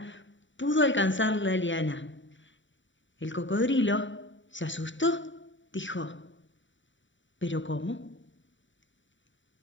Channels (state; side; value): late; right; 0.55 ms